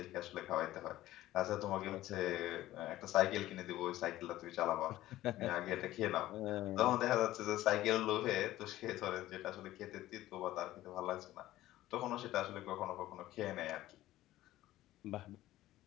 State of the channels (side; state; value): right; quieter; 15.3 dB